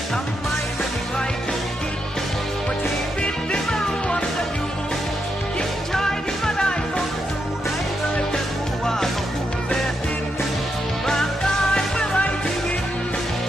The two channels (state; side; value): normal; both; correlation 0.82